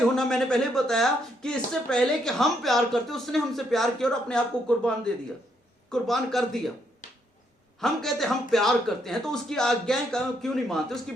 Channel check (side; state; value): both; normal; correlation 0.74